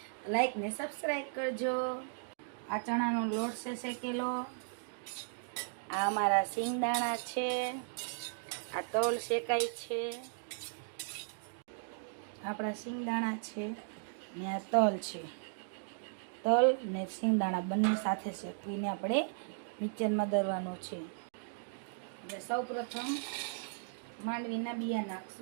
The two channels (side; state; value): left; silent; digital silence